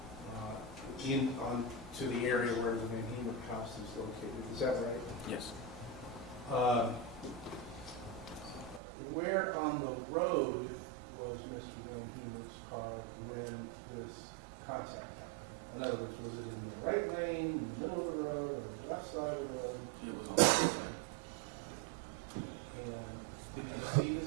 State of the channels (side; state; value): left; drops out; at 8.8 s